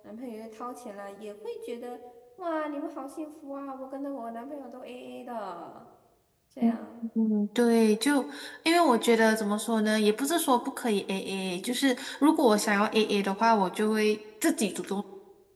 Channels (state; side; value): identical; both; correlation 1.00